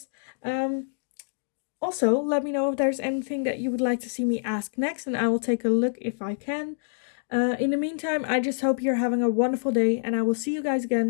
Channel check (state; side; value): silent; right; digital silence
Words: Also, let me know if there's anything that you would like to see me ask next, and I will take a look if I can. In the meantime, I just hope you're having a wonderful day, and I will see you guys